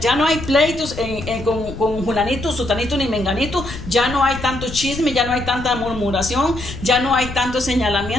no hay pleitos con Julanito, Sutanito ni Menganito. Ya no hay tanto chisme, ya no hay tanta murmuración, ya no hay tanto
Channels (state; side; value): noise; left; rumble, 11 dB below the sound